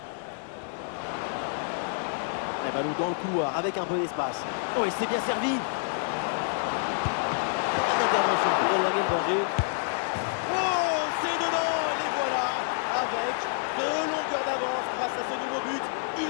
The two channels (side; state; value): right; silent; digital silence